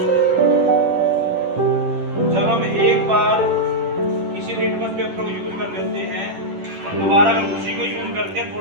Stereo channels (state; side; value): late; left; 10 ms